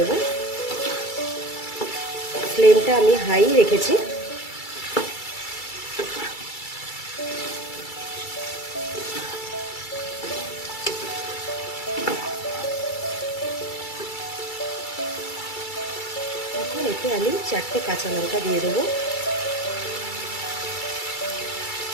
ফ্লেমটা আমি হাই রেখেছি। এখন এতে আমি 4টে কাঁচা লঙ্কা দিয়ে দেবো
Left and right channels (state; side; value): late; right; 2.3 ms